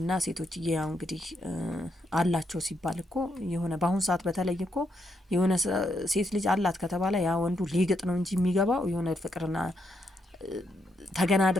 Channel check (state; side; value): normal; both; correlation 0.79